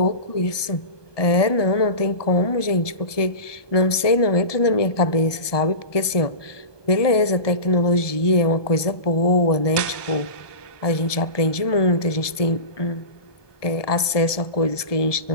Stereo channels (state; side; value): late; right; 1.2 ms